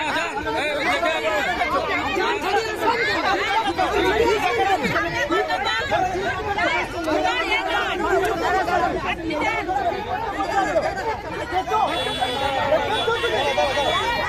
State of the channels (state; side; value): identical; both; correlation 1.00